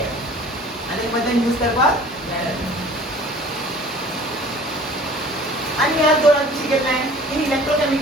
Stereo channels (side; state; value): both; normal; correlation 0.47